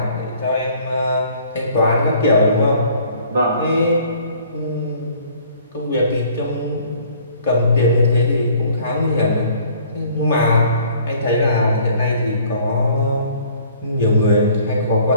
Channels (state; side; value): inverted; both; correlation -0.56